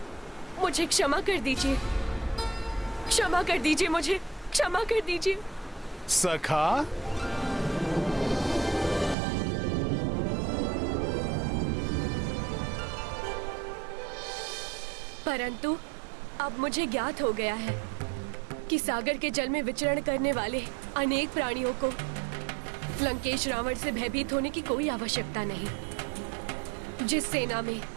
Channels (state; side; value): drops out; left; at 9.2 s